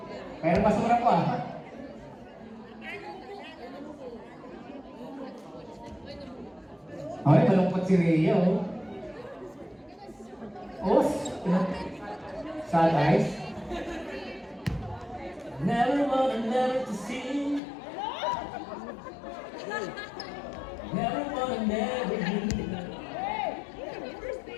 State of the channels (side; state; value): right; drops out; at 17.6 s